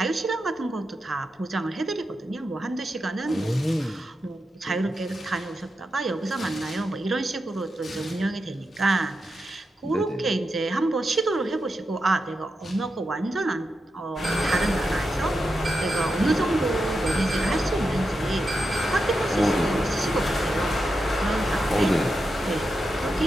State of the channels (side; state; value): both; normal; correlation 0.88